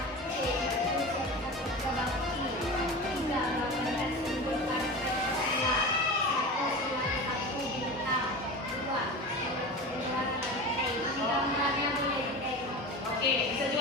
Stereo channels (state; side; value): normal; both; correlation 0.30